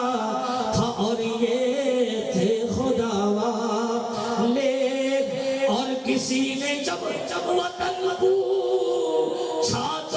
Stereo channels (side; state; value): both; identical; correlation 1.00